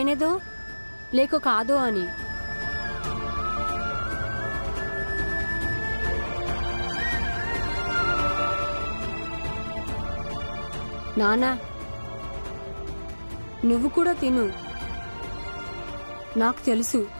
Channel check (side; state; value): both; inverted; correlation -1.00